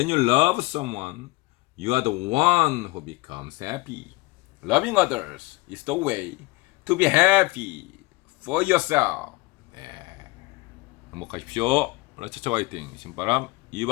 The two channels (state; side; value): quieter; right; 22.4 dB